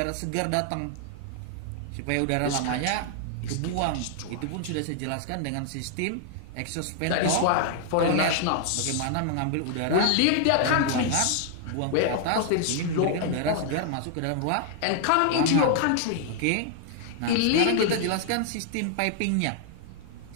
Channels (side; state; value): both; different; correlation 0.00